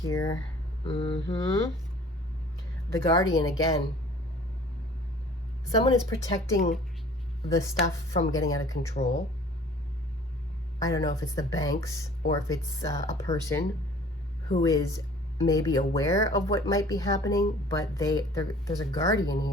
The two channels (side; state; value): both; normal; correlation 0.50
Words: the Guardian again. Someone is protecting the stuff from getting out of control. I don't know if it's the banks or if it's a person who is maybe aware of what might be happening, but there's a guardian